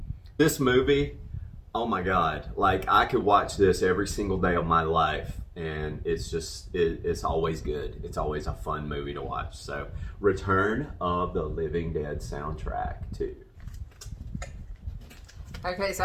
This movie, oh my God, like I could watch this every single day of my life, and it's just, it's always good. It's always a fun movie to watch. So, Return of the Living Dead soundtrack too. Okay, so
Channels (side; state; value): both; identical; correlation 1.00